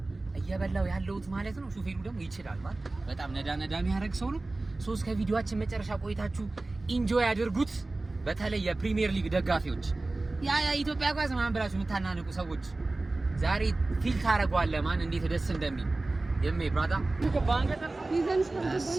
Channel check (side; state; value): left; quieter; 3.1 dB